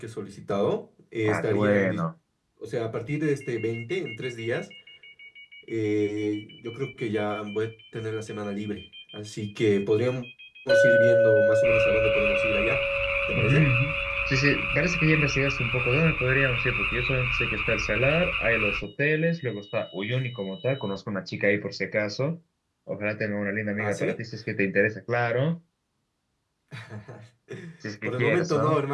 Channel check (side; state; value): both; identical; correlation 1.00